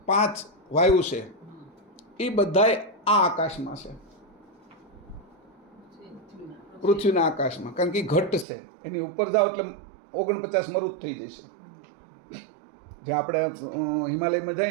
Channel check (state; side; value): drops out; left; at 8.5 s